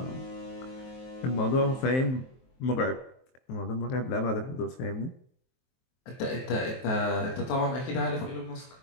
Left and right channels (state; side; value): late; right; 23 ms